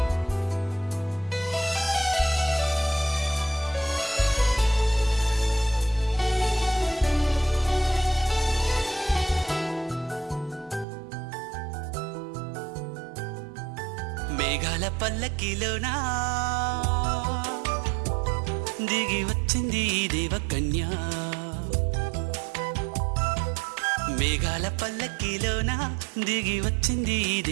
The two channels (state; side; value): drops out; left; at 10.9 s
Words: మేఘాల పల్లకిలోనా దిగి వచ్చింది ఈ దేవకన్య, మేఘాల పల్లకిలోన దిగి వచ్చింది ఈ